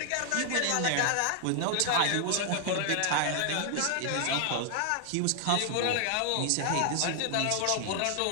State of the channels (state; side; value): different; both; correlation 0.00